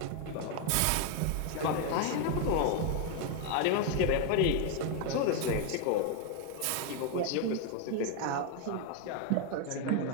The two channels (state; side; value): different; both; correlation 0.01